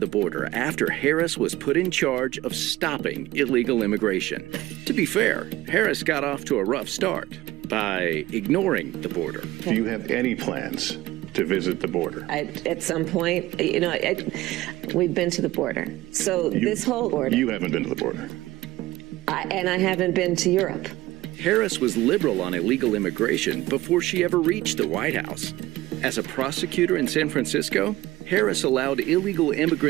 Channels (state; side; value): quieter; left; 17.4 dB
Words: border after Harris was put in charge of stopping illegal immigration. To be fair, Harris got off to a rough start by ignoring the border. Do you have any plans to visit the border? At some point, we've been to the border. So this whole border. You haven't been to the border. And I haven't been to Europe. Harris was liberal on illegal immigration before she ever reached the White House. As a prosecutor in San Francisco, Harris allowed illegal